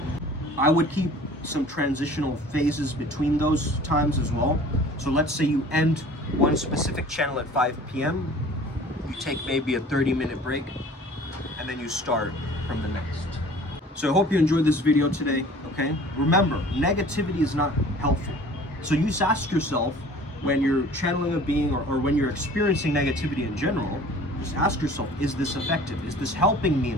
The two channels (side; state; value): both; normal; correlation 0.47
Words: I would keep some transitional phases between those times as well. So let's say you end one specific channel at 5 p.m. You take maybe a 30-minute break, and then you start from the next. So I hope you enjoyed this video today, okay? Remember, negativity is not helpful. So you just ask yourself, when you're channeling a being or when you're experiencing negativity in general, just ask yourself, is this effective? Is this helping me